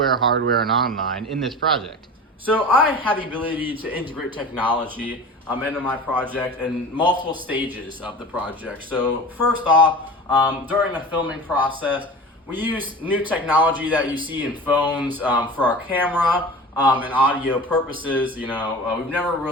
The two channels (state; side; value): normal; both; correlation 0.35